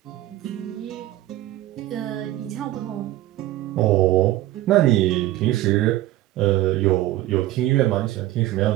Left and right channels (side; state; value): left; quieter; 15.3 dB